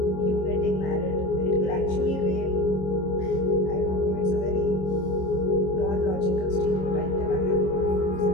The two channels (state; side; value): late; right; 26 ms